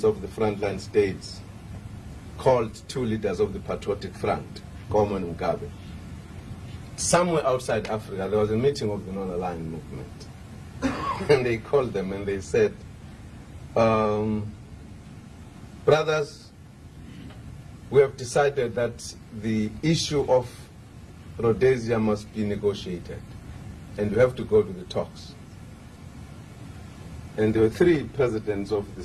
of the frontline states called 2 leaders of the Patriotic Front, Goma and Mugabe. Somewhere outside Africa, there was a meeting of the non-aligned movement. And they called them and they said, brothers, we have decided that the issue of Rhodesia must be negotiated, and we have to go to the talks. And there were 3 presidents of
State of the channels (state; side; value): identical; both; correlation 1.00